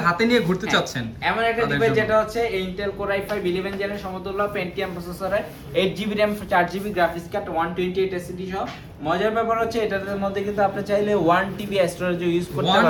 হাতে নিয়ে ঘুরতে চাচ্ছেন এমন একটা ডিভাইস, যেটা হচ্ছে Intel Core i5 11 জেনের সমতুল্য Pentium প্রসেসরের, 8GB RAM 4GB graphics card, 128 SSD সহ। মজার ব্যাপার হচ্ছে এটার মধ্যে কিন্তু আপনি চাইলে 1TB স্টোরেজ ইউজ করতে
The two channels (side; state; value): both; identical; correlation 1.00